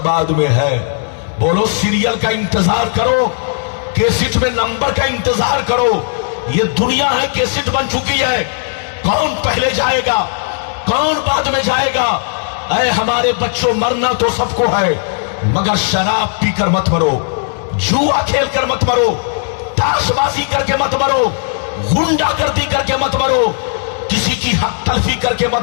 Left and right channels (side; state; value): right; silent; digital silence